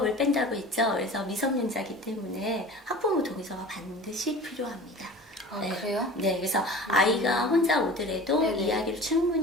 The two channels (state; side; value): normal; both; correlation 0.39